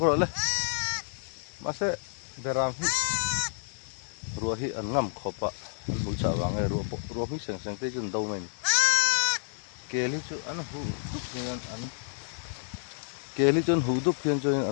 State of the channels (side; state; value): right; silent; digital silence